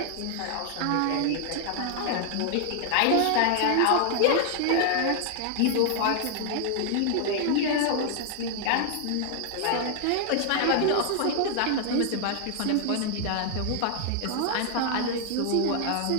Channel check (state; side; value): different; both; correlation 0.00